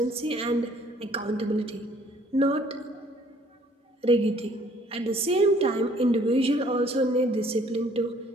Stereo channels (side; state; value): both; normal; correlation 0.59